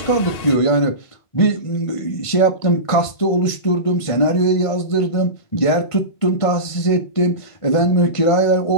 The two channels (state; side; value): late; right; 1.5 ms